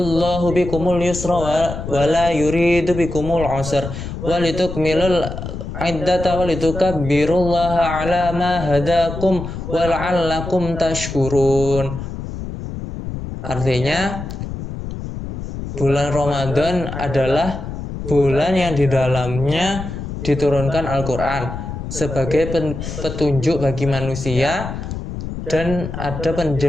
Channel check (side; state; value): left; noise; rumble, 7 dB below the sound